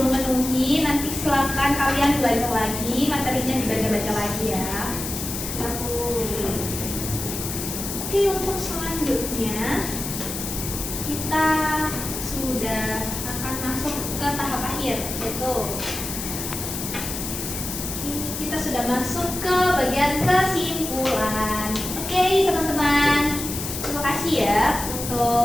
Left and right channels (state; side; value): noise; left; hiss, 6 dB below the sound